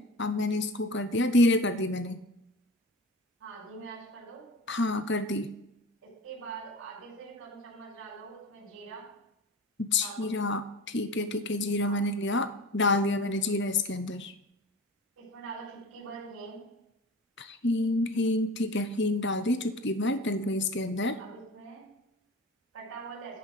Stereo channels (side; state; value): both; normal; correlation 0.36